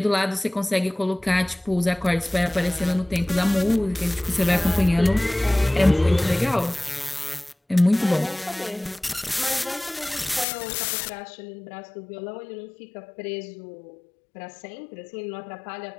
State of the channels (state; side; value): drops out; right; at 10.5 s